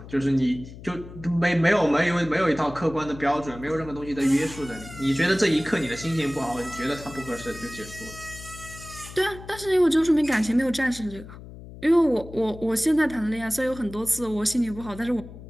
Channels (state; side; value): noise; left; hum, 15 dB below the sound